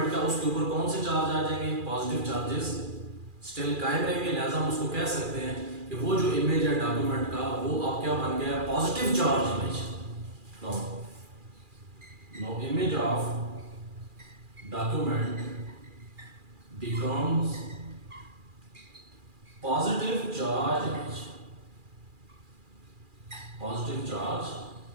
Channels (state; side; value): late; left; 2.4 ms